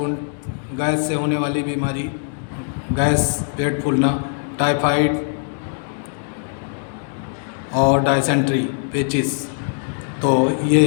गैस से होने वाली बीमारी, गैस, पेट फूलना, टाइफाइड और डायसेंट्री, पेचिस। तो ये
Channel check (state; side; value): silent; right; 63 dB below the other